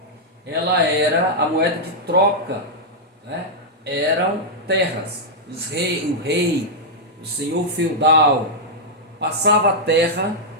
ela era a moeda de troca, né? Eram terras. O rei, o senhor feudal, passava a terra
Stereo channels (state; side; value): normal; both; correlation -0.06